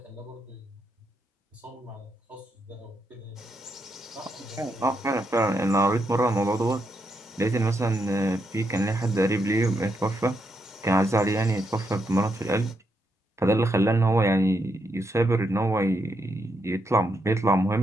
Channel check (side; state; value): both; normal; correlation 0.80